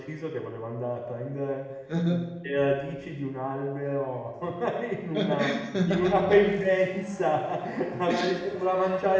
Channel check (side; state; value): both; identical; correlation 1.00